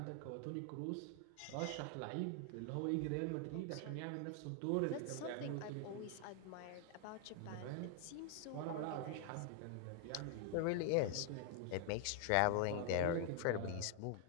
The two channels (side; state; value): both; different; correlation 0.00